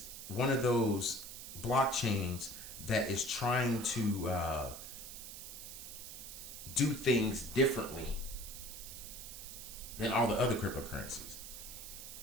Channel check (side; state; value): right; noise; hiss, 10 dB below the sound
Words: one of those blockchains that is trying to do things differently than all the other cryptocurrencies.